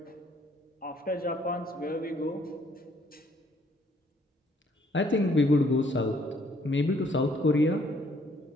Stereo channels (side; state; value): both; normal; correlation 0.65